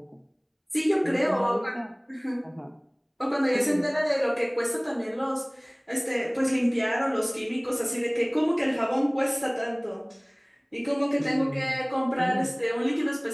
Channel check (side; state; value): both; identical; correlation 1.00